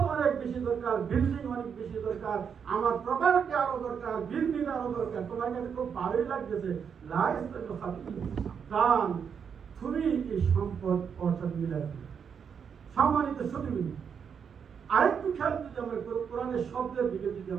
অনেক বেশি দরকার, বিল্ডিং অনেক বেশি দরকার, আমার প্রপার্টি আরো দরকার, বিল্ডিং আরো দরকার, তোমার কাছে খুব ভালোই লাগতেছে, লা ইস্তাবিল খাবিস, দান তুমি এই সম্পদ অর্থাৎ মিলাই। সম্মানিত সুধী, আরেকটু খেয়াল যদি আমরা কোরআনের শব্দের দিকে যদি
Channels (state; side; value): quieter; left; 7.0 dB